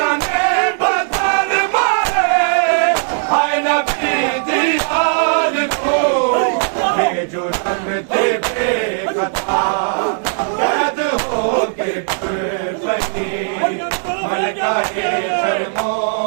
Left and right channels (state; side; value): silent; left; 68 dB below the other